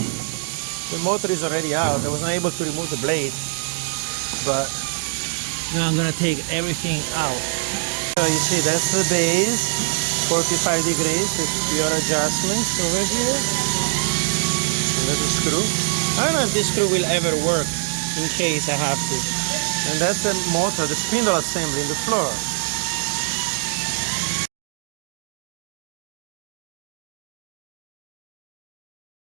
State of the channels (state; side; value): silent; left; digital silence